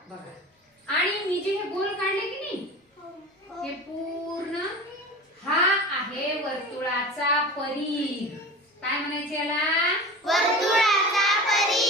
बघा, आणि मी जे हे गोल काढले की नाही, हे पूर्ण हा आहे वर्तुळाचा परिघ। काय म्हणायचं याला? वर्तुळाचा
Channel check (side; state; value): both; normal; correlation 0.34